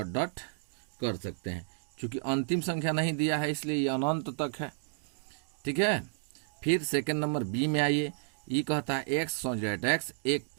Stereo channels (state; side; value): silent; left; digital silence